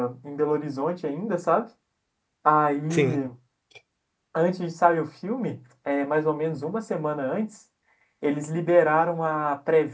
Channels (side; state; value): both; identical; correlation 1.00